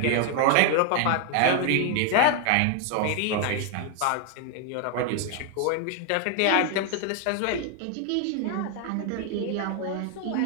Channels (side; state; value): both; different; correlation 0.00